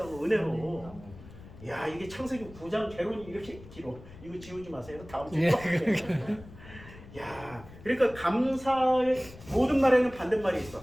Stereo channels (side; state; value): left; noise; rumble, 18 dB below the sound